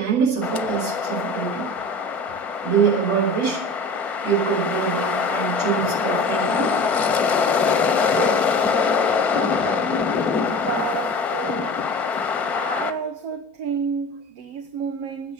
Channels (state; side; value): late; left; 4.4 ms